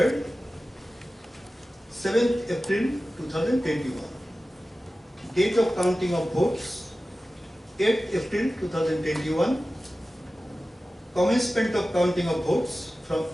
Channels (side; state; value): both; normal; correlation 0.95